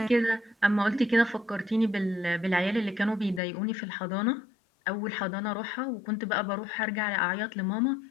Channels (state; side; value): drops out; right; at 3.4 s